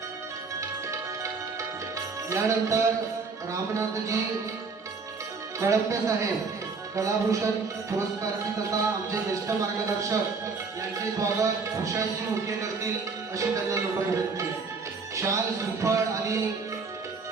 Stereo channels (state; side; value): quieter; left; 4.6 dB